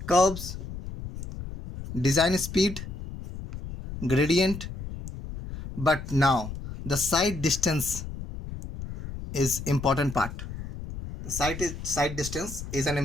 curves, design speed, gradient, but now the side distance is important part. The side distance is an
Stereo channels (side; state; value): left; noise; rumble, 9 dB below the sound